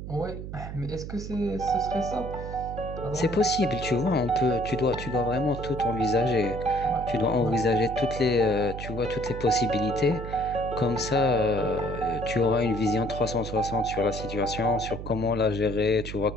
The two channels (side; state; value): right; noise; hum, 8 dB below the sound